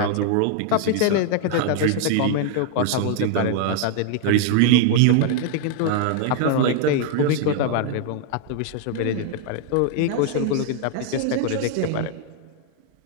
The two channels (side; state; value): both; different; correlation 0.00